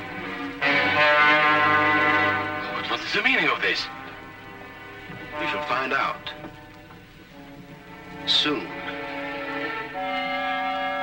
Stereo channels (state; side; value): identical; both; correlation 1.00